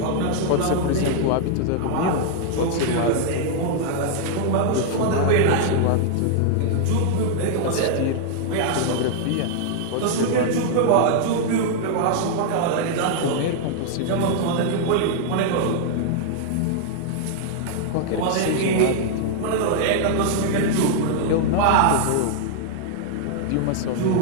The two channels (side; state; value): both; different; correlation -0.01